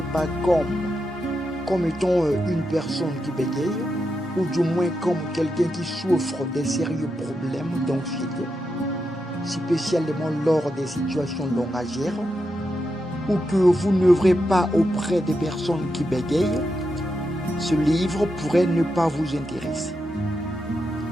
pas comme étant une personne qui bégaye, ou du moins comme quelqu'un qui souffre de sérieux problèmes d'anxiété, spécialement lors des situations langagières, ou que vous n'œuvrez pas auprès des personnes qui bégayent, ce livre pourrait ne pas vous intéresser.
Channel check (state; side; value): normal; both; correlation 0.86